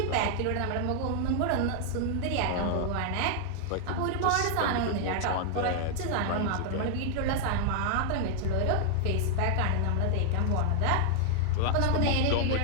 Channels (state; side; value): different; both; correlation -0.01